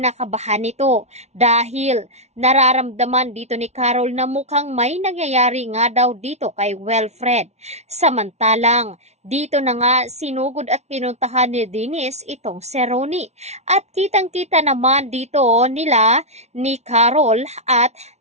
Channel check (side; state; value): left; late; 0.32 ms